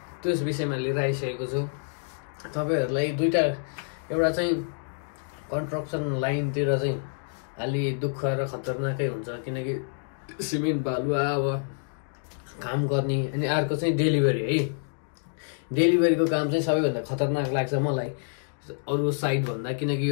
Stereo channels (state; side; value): silent; right; digital silence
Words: त्यस विषयमा लिएर आइसकेको छु तपाईँहरूलाई। दुईटा, एउटा चाहिँ कन्स्ट्रक्सन लाइनतिर चाहिँ अलि दुःख र खतरनाकै हुन्छ किनकि सिमेन्ट बालुवा अब काम गर्ने, अनि अर्को चाहिँ डेलिभरी है। डेलिभरीको काम चाहिँ सबैभन्दा खतरनाक लाग्छ मलाई अरू साइड भन्दा, किनकि